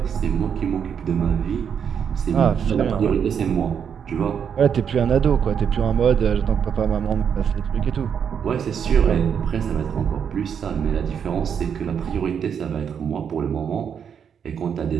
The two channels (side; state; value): left; quieter; 7.6 dB